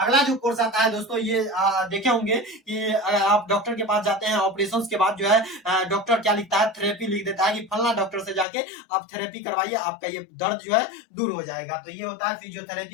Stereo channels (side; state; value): right; drops out; at 8.5 s